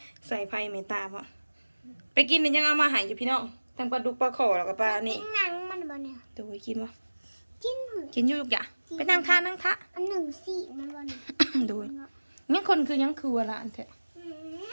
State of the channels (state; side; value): inverted; both; correlation -1.00